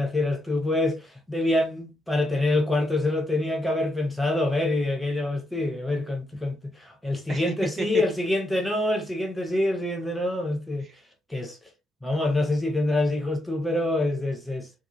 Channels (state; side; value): normal; both; correlation 0.81